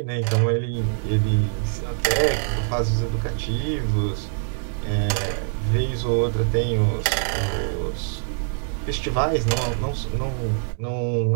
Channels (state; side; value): silent; left; digital silence